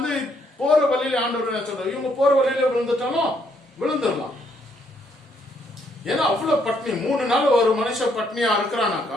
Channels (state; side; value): normal; both; correlation 0.71